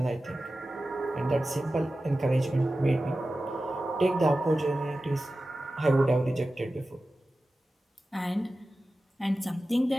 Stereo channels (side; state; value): both; normal; correlation 0.95